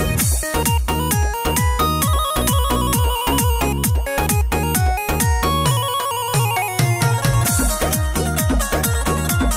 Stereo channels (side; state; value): both; identical; correlation 1.00